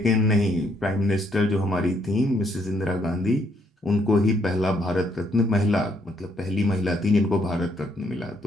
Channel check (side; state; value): both; normal; correlation 0.71